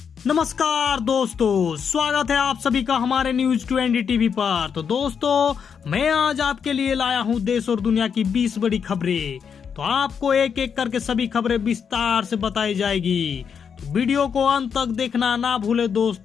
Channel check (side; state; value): right; quieter; 6.9 dB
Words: नमस्कार दोस्तों, स्वागत है आप सभी का हमारे न्यूज 20 टीवी पर। तो दोस्तों, मैं आज आपके लिए लाया हूं देश और दुनिया की 20 बड़ी खबरें। तो आपको एक एक करके सभी खबरें विस्तार से बताई जाएगी, तो वीडियो को अंत तक देखना ना भूले